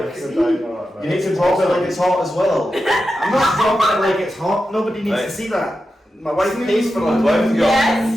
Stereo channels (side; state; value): both; normal; correlation 0.90